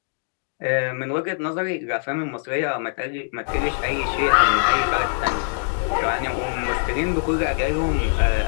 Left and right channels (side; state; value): right; silent; 64 dB below the other